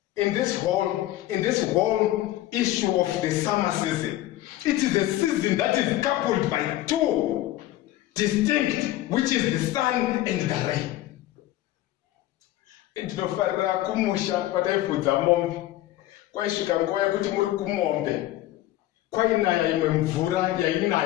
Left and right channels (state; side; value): quieter; right; 15.2 dB